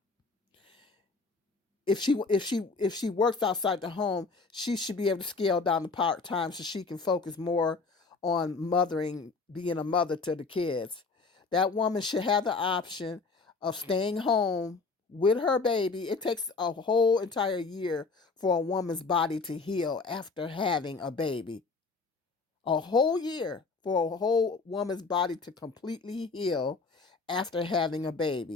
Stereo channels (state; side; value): quieter; right; 4.2 dB